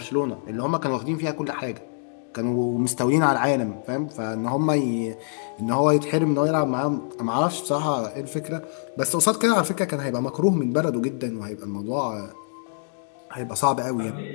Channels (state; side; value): silent; right; digital silence